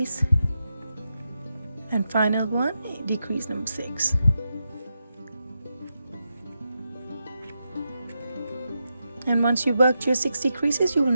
and final one, decrease number 6. And once you worked your 60 creases, you will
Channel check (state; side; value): inverted; both; correlation -0.86